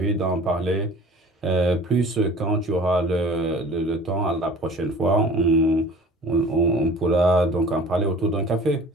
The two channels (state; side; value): normal; both; correlation 0.45